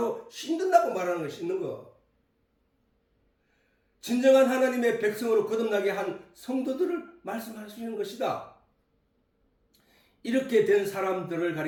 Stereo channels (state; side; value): identical; both; correlation 1.00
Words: 씻는다고 말하는 거야. 씻는 거. 진정한 하나님의 백성으로 거듭나게 한 성도들을 말씀하시는 것이다. 이렇게 된 사람들을